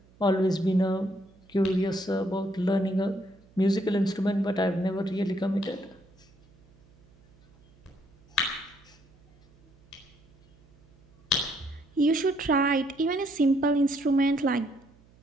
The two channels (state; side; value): noise; right; hum, 29 dB below the sound